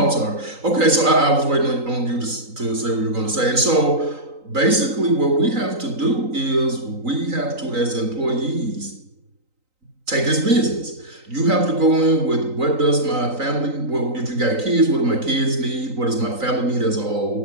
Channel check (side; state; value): left; late; 3.9 ms